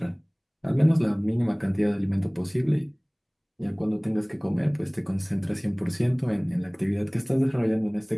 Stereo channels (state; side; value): identical; both; correlation 1.00